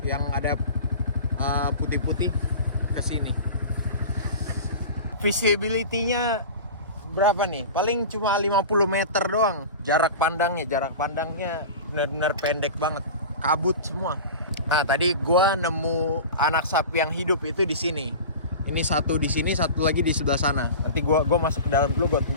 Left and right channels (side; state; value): both; inverted; correlation -0.33